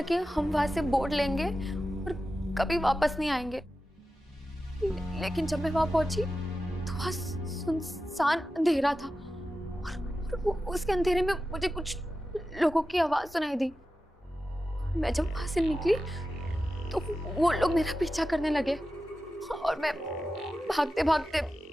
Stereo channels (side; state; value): both; normal; correlation 0.92